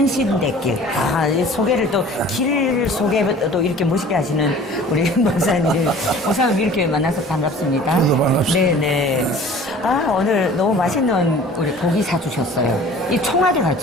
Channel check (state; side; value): normal; both; correlation 0.46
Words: 이 소개를 또, 길 소개도 이렇게 멋있게 하시는 우리 목사님. 목사님 이렇게 만나서 반갑습니다. 저도 반갑습니다. 네네. 오늘 너무 맛있는 우리 고기 사주셨어요. 이 청와대